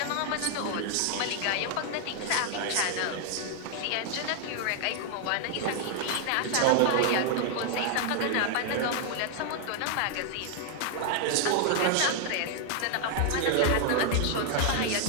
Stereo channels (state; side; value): different; both; correlation 0.00